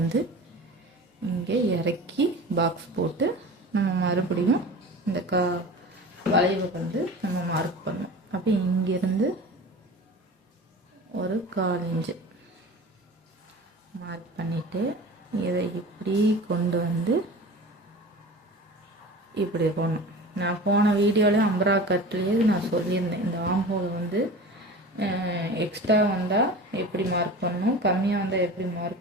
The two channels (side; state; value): both; normal; correlation 0.36